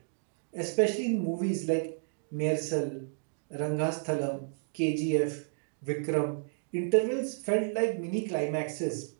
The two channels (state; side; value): silent; left; digital silence